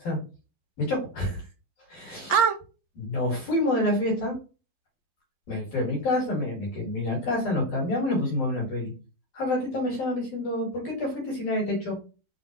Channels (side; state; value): right; late; 12 ms